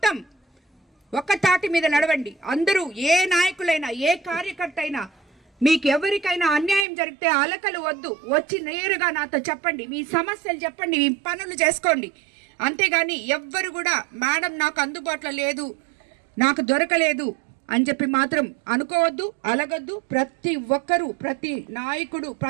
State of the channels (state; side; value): drops out; left; at 6.9 s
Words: ఒక్క తాటి మీద నడవండి. అందరూ ఏ నాయకులైనా ఏ కార్యకర్త అయినా మీకు ఎవరికైనా అన్యాయం జరిగితే అలకలు వద్దు, వచ్చి నేరుగా నాతో చెప్పండి, మీ సమస్యలు చెప్పండి, మీ పనులు చేసుకోండి. అంతేగాని ఎవ్వరు కూడా మేడం నాకు అందుబాటులో లేదు, నాకు దొరకలేదు అని చెప్పి మాత్రం అనుకోవద్దు, అలగొద్దు. ప్రతి ఒక్కరూ, ప్రతి నాయకుడు,